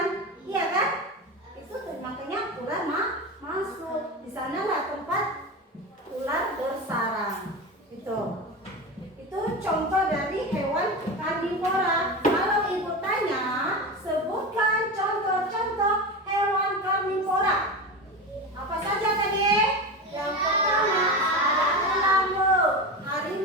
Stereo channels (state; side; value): normal; both; correlation 0.23